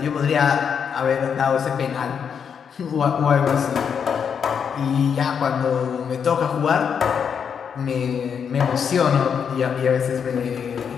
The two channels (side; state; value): right; quieter; 7.1 dB